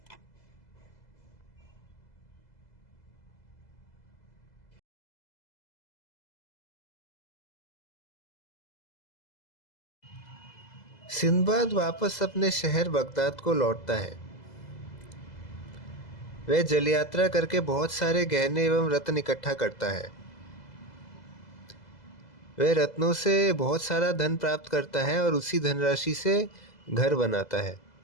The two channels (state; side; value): late; right; 2.0 ms